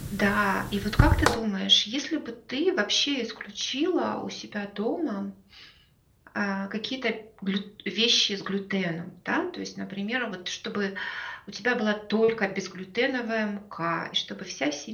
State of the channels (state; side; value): identical; both; correlation 1.00